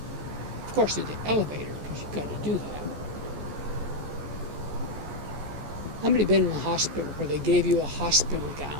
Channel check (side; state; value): left; late; 14 ms